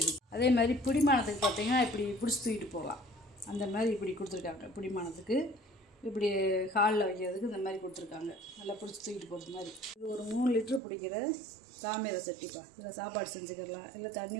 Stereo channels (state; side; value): drops out; left; at 10.8 s